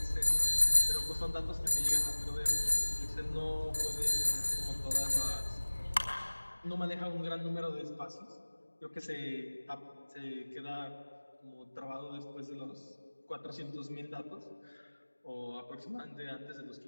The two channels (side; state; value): both; inverted; correlation -1.00